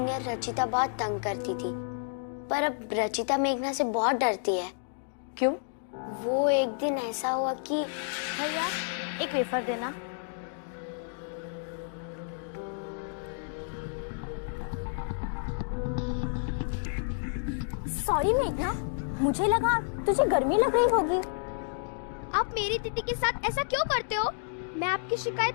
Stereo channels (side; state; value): right; silent; digital silence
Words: रचिता बहुत तंग करती थी, पर अब रचिता मेघना से बहुत डरती है। क्यों? वो एक दिन ऐसा हुआ कि भैया एक वेफर देना। सॉरी मेघना, मुझे लगा तुझे गर्मी लग रही होगी। आप मेरी दीदी के साथ ऐसा क्यों करते हो? मैं आपकी शिकायत